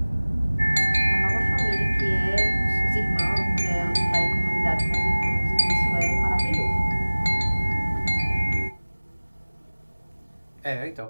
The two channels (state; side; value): inverted; both; correlation -1.00